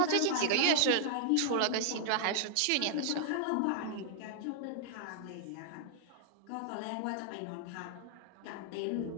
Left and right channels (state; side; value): different; both; correlation 0.00